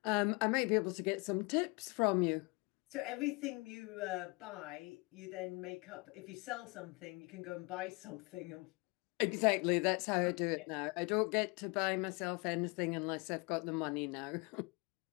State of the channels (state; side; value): quieter; right; 28.5 dB